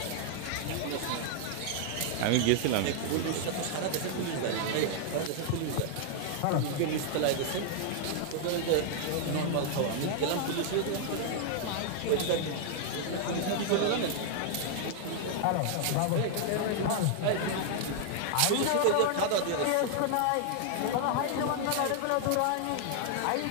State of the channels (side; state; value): both; different; correlation 0.00